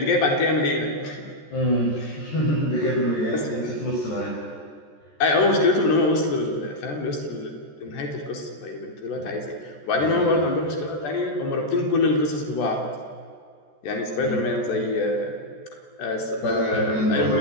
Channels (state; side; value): late; right; 14 ms